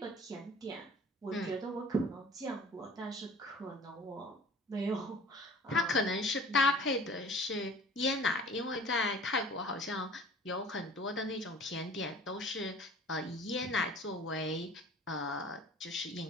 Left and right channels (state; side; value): normal; both; correlation 0.47